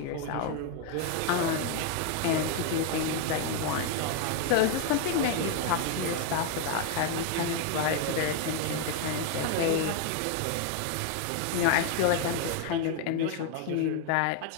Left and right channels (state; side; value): different; both; correlation 0.01